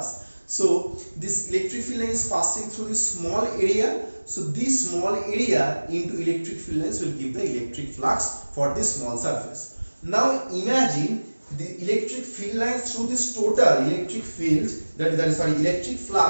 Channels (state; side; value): inverted; both; correlation -1.00